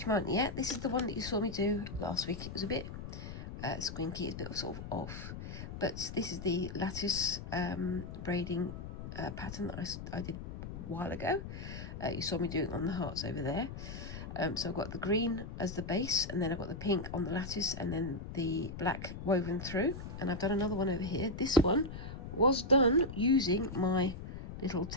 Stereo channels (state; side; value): noise; left; rumble, 9 dB below the sound